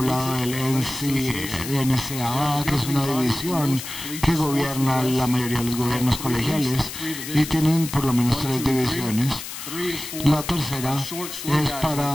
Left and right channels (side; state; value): left; noise; hiss, 9 dB below the sound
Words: del NCAA, que es una división que gobierna la mayoría de los gobiernos colegiales y tienen por lo menos 3 divisiones. La tercera es